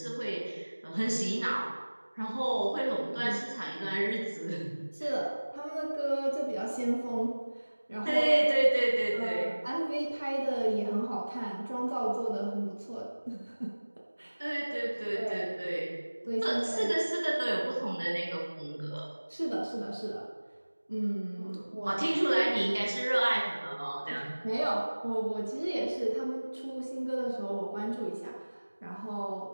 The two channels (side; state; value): both; inverted; correlation -1.00